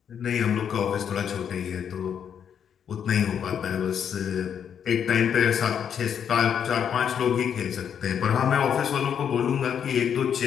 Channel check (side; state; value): right; quieter; 8.2 dB